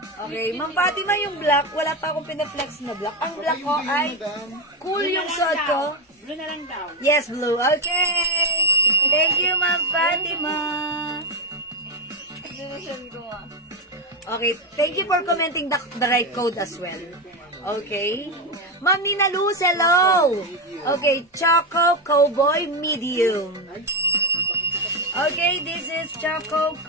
Okay, Ma'am Fatima, yung black, wala pa akong pinaflex na black. Ang black ko ay cool yung suot ko. Blue na lang daw. Yes, blue. Okay. Thank you, Ma'am Fatima. Okay, thank you for commenting the right code as well. Okay. Ma'am Nina Luz, hello. Okay, Choco Cowboy Medium. Okay, this is Choco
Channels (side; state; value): both; normal; correlation 0.12